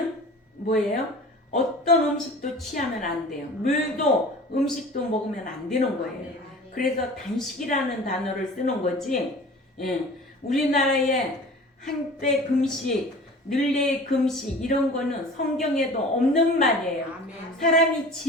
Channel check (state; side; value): normal; both; correlation 0.41